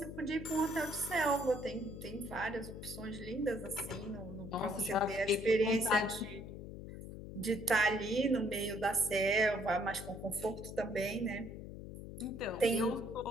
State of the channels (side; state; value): left; noise; hum, 10 dB below the sound